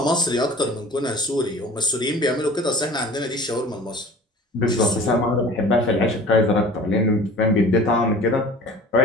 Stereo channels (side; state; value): both; normal; correlation 0.43